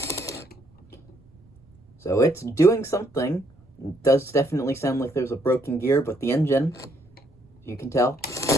So it's doing something. It does definitely sound like there's a broken gear, but the engine, you can tell,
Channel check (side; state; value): right; noise; rumble, 29 dB below the sound